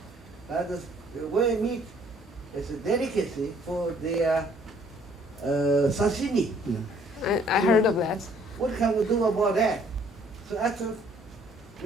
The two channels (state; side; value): normal; both; correlation 0.61